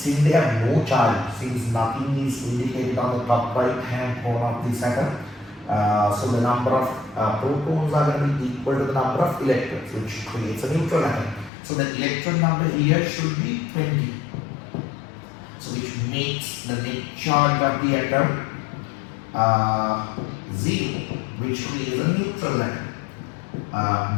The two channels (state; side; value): drops out; right; at 11.5 s